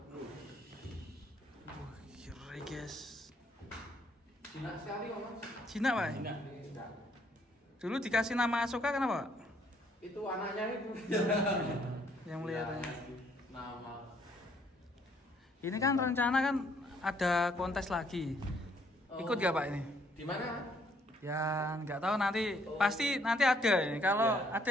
Wah, kira guys. Cina sekali kok Mas. Cina Pak? Enggak. Dulu dikasih nama Asoka kenapa Pak? Itu anaknya itu. Yang melihatnya. Nama. Ini kan rencana kan ada kontes lagi. Ikut gak Pak ini? Di mana? Ya nggak tahu nanti, pasti nanti ada ini. Kalau Ya. ada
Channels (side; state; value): both; normal; correlation 0.67